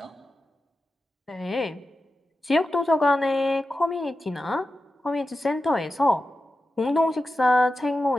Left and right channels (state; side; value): normal; both; correlation 0.92